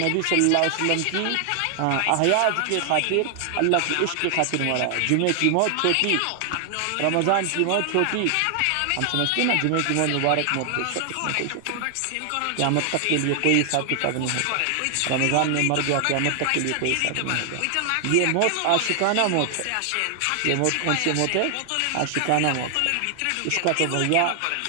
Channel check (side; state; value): both; different; correlation 0.00